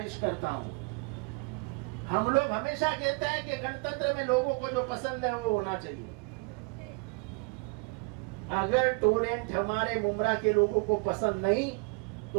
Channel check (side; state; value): left; quieter; 31.3 dB